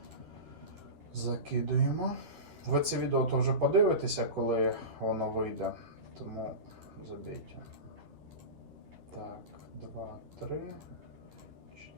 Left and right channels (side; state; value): left; late; 11 ms